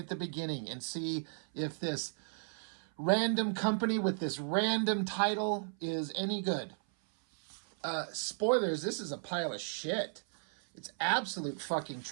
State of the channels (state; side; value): silent; left; 55 dB below the other